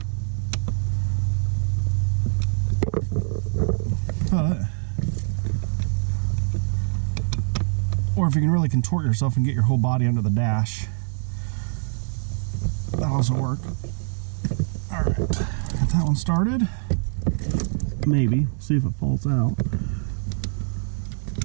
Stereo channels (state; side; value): silent; left; digital silence